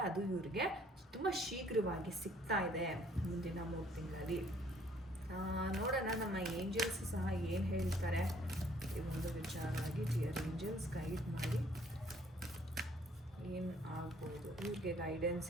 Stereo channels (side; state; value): both; normal; correlation 0.61